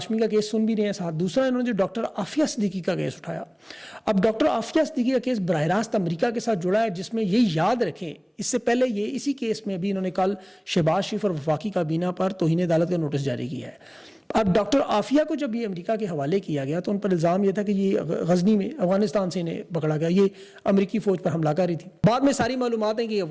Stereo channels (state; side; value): identical; both; correlation 1.00